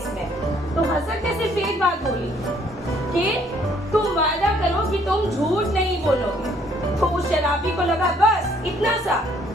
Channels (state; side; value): normal; both; correlation 0.64